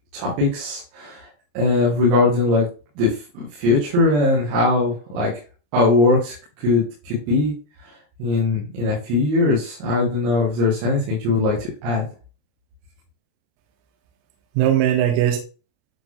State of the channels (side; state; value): left; late; 34 ms